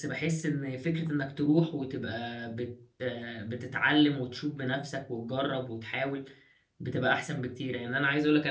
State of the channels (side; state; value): both; identical; correlation 1.00